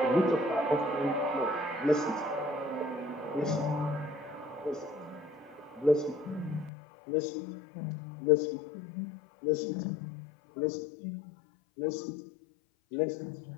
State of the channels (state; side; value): drops out; right; at 6.7 s